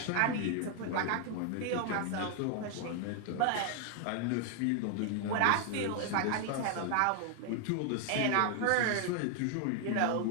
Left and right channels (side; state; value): both; different; correlation 0.00